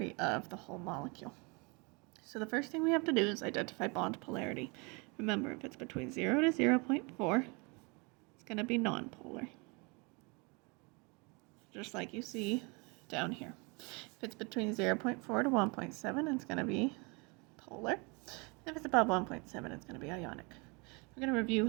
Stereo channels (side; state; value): left; quieter; 30.4 dB